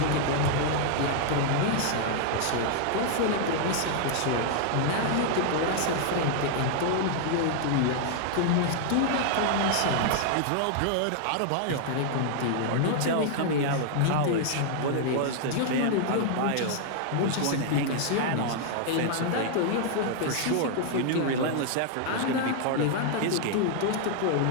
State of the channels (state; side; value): different; both; correlation 0.00